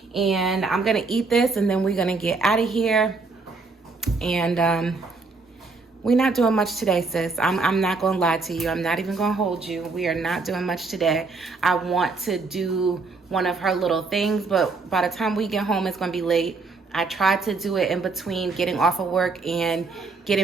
and I'm gonna eat this, and then we're gonna get out of here. And we're not doing much today, sis. I'm not gonna lie to you. I'm not even gonna hold you. We are not doing much today. I want to do one of her little things, but by the time we get home, it's gonna be late. I tried to do it in between getting off of work and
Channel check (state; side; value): quieter; left; 4.0 dB